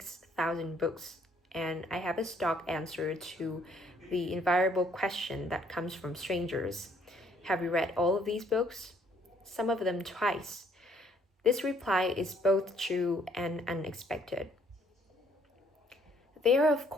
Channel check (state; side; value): normal; both; correlation 0.65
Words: books, and I have a stock answer to the invariable question that comes from strangers. Have you read all of these books? Some of them twice. This reply is both true and unexpected. There are, of